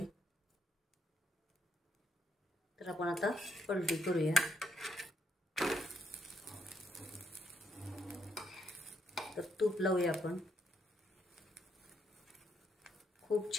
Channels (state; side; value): normal; both; correlation 0.75